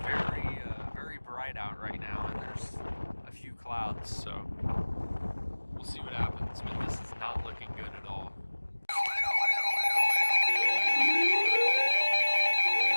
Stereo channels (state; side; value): inverted; both; correlation -1.00